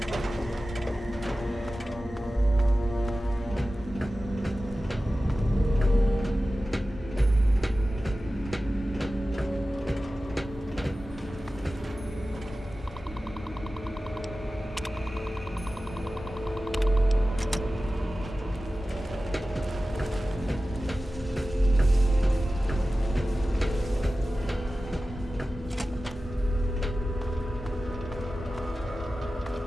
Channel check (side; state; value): both; normal; correlation 0.95